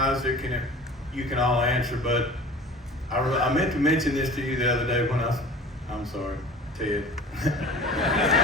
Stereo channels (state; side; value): normal; both; correlation 0.41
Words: and you can all answer, but I meant to mention this to you the other day when I'm sorry, Ted.